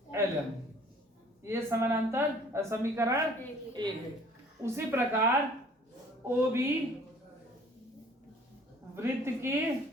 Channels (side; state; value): both; normal; correlation 0.53